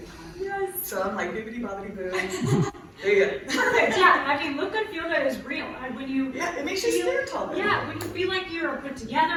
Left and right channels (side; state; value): both; identical; correlation 1.00